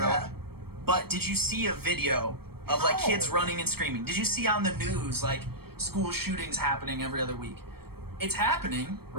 yeah. But did you see a video of like kids running and screaming? Did you see on the news like school shootings happening every other week? It's happening,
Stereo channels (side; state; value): left; late; 0.95 ms